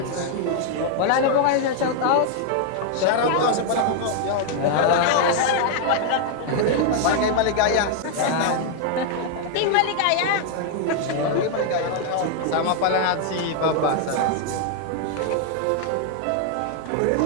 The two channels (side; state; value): both; different; correlation 0.00